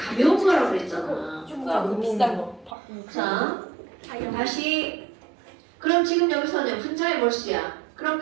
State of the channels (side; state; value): left; drops out; at 2.8 s